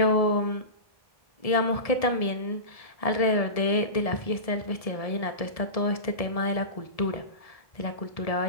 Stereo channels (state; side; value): late; right; 1.7 ms